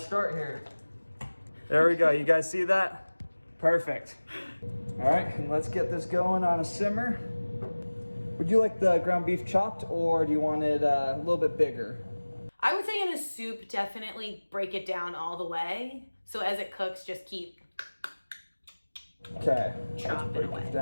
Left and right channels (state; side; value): inverted; both; correlation -1.00